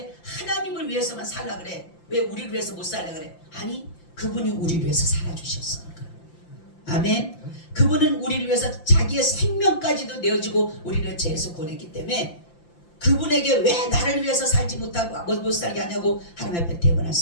하나님을 위해서만 살라 그래? 왜 우리를 위해서 못 살라 그래? 아니, 그분이 우리를 위해서 살아주셨으니까. 아멘. 그분은 우리를 위해서 자기의 생명까지도 내어주고 우리를 죄에서 구원했기 때문에 그분에게 왜 나를 위해서 살지 못하고 못 살게 하냐고 하나님 앞에 대변할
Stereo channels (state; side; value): late; right; 5.8 ms